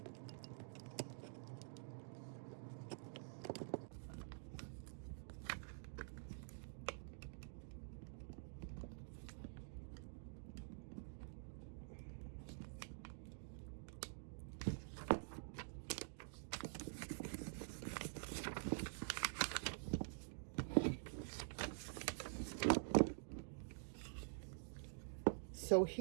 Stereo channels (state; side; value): silent; left; digital silence